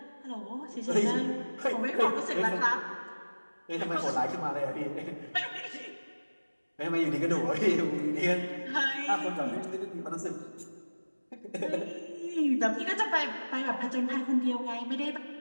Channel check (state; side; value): inverted; both; correlation -1.00